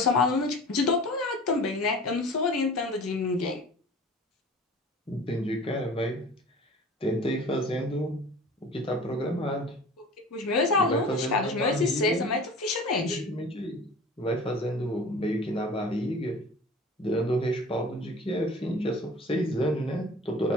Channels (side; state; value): both; normal; correlation 0.41